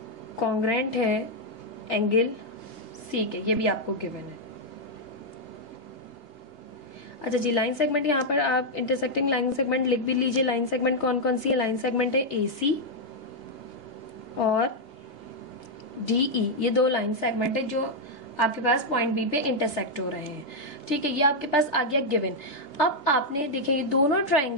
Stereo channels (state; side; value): late; right; 3.5 ms